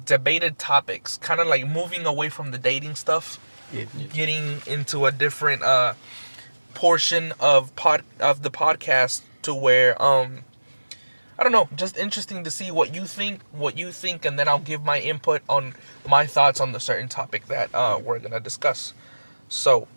debated topics, kind of like moving away from the dating stuff. Getting into a different portion of the podcast to where I don't know, just interesting to see what you think, and then I'll give my input on my thoughts on the certain topic that we're gonna discuss. So,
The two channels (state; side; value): inverted; both; correlation -1.00